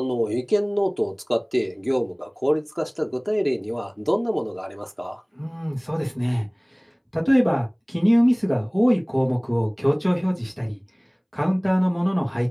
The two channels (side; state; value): both; identical; correlation 1.00